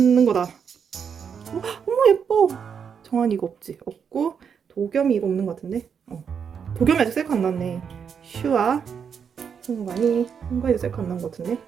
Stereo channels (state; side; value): quieter; left; 7.0 dB